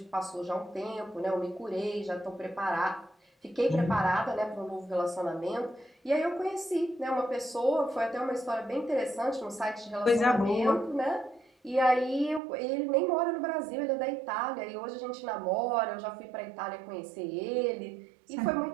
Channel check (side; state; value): left; drops out; at 12.4 s